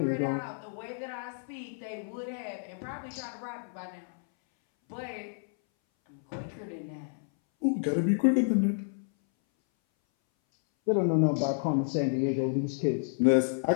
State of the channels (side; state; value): right; silent; 58 dB below the other